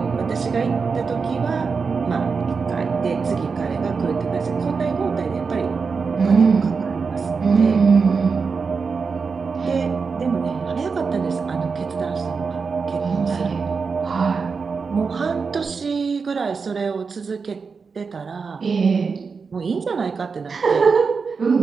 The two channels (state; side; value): quieter; left; 5.1 dB